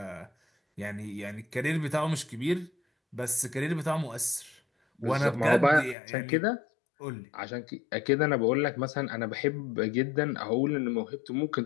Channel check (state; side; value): drops out; right; at 6.0 s